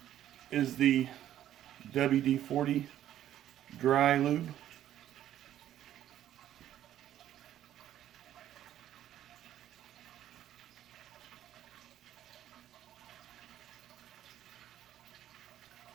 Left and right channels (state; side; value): quieter; left; 11.9 dB